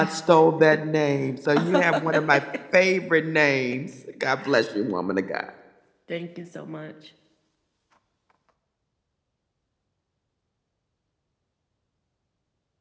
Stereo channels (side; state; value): both; identical; correlation 1.00